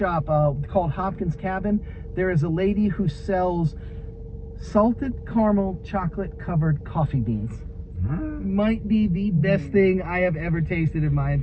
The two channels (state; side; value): identical; both; correlation 1.00